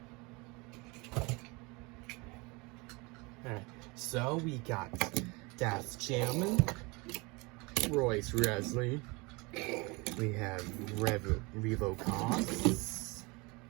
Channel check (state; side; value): quieter; left; 26.7 dB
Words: Alright, so we got Das Gentleman, Royce Resley, We have Revo Costs.